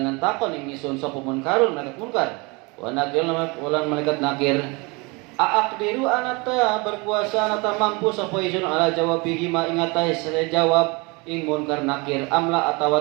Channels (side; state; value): left; quieter; 27.6 dB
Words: takon ing isun sapa munkarun malaikat munkar. Wa nakir lan malaikat nakir. Aqdiru anata berkuasa anata mampu sapa isun ala jawabihi ma ing atas jawab ing munkar nakir amla